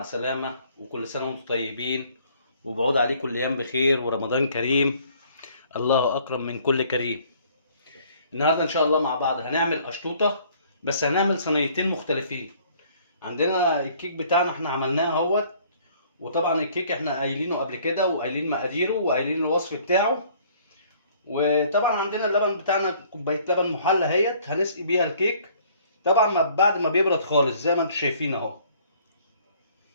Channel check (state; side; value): inverted; both; correlation -0.58